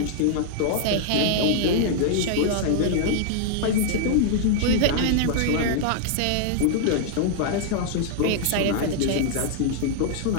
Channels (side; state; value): both; different; correlation -0.01